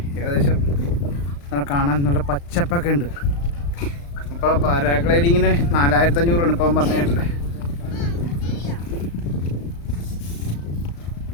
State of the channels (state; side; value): late; right; 35 ms